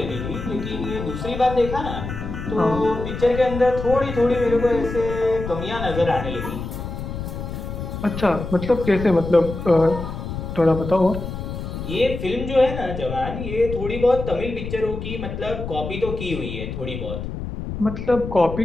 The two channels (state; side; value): noise; left; rumble, 7 dB below the sound